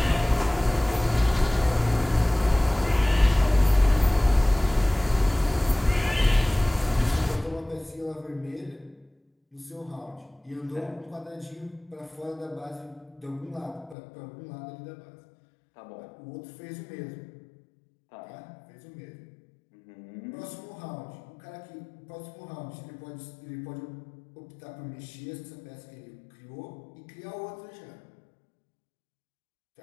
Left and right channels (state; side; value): drops out; right; at 14.0 s